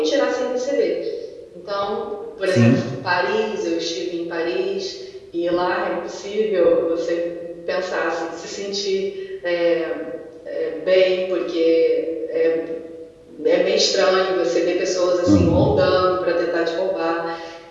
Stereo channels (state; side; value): identical; both; correlation 1.00